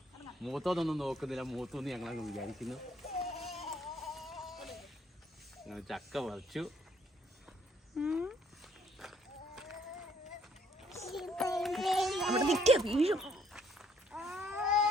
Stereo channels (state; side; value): normal; both; correlation 0.65